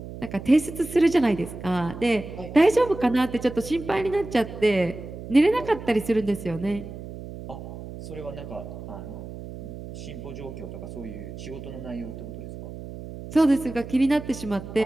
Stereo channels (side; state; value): right; noise; hum, 11 dB below the sound